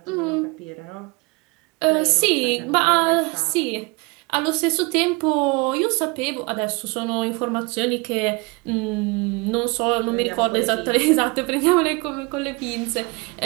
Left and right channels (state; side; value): quieter; left; 27.6 dB